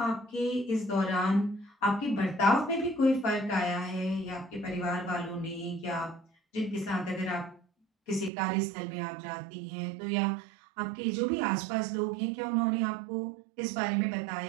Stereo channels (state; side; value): drops out; left; at 8.3 s